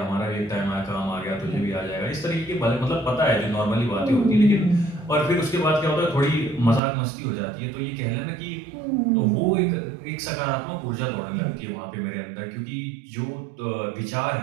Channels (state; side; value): drops out; left; at 6.8 s